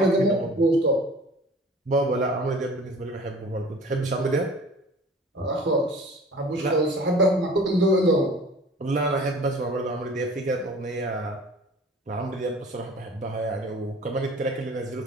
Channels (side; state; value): both; normal; correlation 0.45